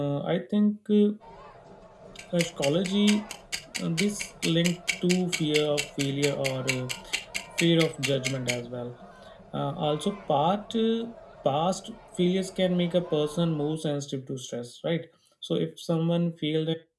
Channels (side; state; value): both; identical; correlation 1.00